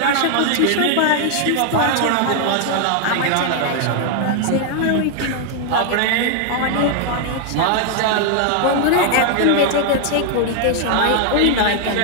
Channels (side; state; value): both; different; correlation 0.00